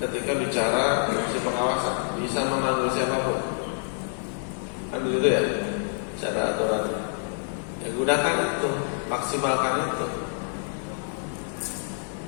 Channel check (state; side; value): silent; right; 56 dB below the other